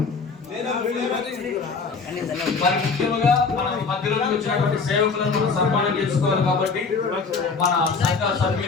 మరి ముఖ్యంగా మన మధ్యలోకి వచ్చినటువంటి సేవకులను కూడా సన్మానం చేసుకోవాలి కాబట్టి మన సంఘ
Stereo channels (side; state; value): right; quieter; 4.8 dB